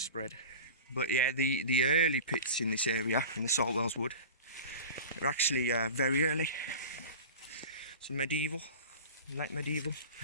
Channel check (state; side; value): inverted; both; correlation -0.33